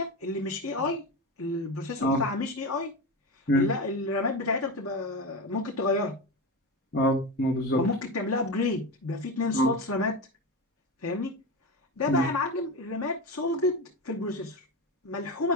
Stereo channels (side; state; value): both; normal; correlation 0.20